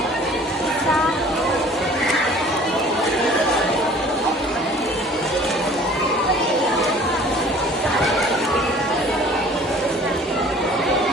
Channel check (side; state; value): both; normal; correlation 0.50